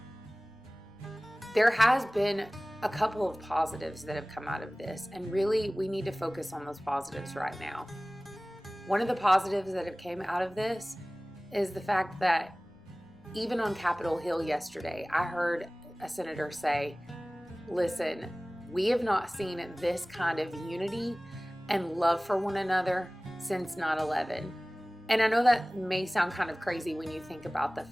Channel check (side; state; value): left; noise; rumble, 28 dB below the sound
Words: There has been a couple of positives that have come out of this, and really we need to focus on those positives right now. One of the positives that have came out of this is the fact that even on Capitol Hill yesterday, I heard a senator say, listen, we have not seen this kind of unity and love for one another since 9/11. And I know that may sound kind of crazy when you think about the